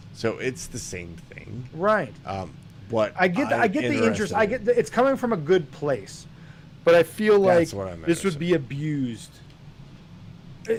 So it's the same thing. Right. But I get the interest. It's coming from a good place, but I feel like this would be abused.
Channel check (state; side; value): identical; both; correlation 1.00